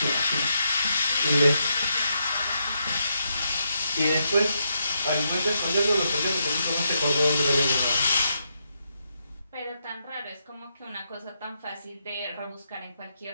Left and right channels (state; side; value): inverted; both; correlation -0.81